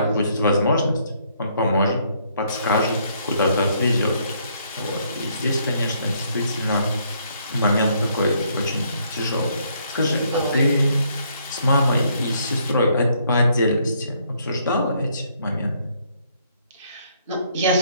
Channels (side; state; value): both; inverted; correlation -0.69